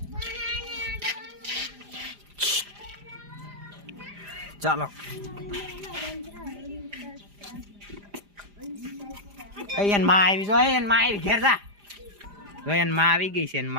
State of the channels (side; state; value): left; late; 4.9 ms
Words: ચાલો એન માં આવી જો એન માં આવી ઘેર જા જો એન માં આવી ગઈ છે એન